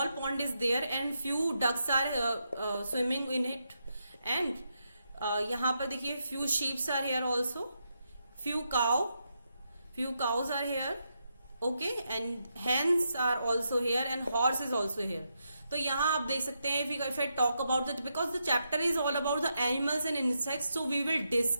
pond is there and few ducks are swimming in it. And यहाँ पर देखिए few sheeps are here also, few cows are here. Okay, and hens are also here and horse is also here. तो यहाँ आप देख सकते हैं, if I talk about that, because the chapter is all about the animals and insects, so we will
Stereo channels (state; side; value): inverted; both; correlation -0.83